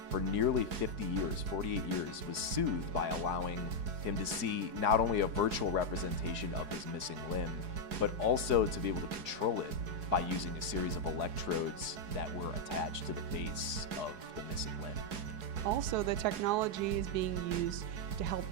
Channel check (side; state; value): left; late; 4.7 ms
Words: for nearly 50 years, 48 years, was soothed by allowing him to see not only a virtual representation of his missing limb, but also to be able to control it by using a series of electrodes that were attached to the base of the missing limb. Also, the technology is being used to help